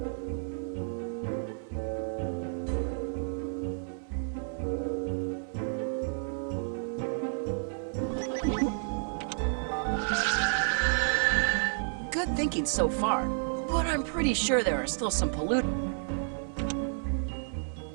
Good thinking so far, but I'm pretty sure there are still some pollutants.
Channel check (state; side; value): silent; left; 57 dB below the other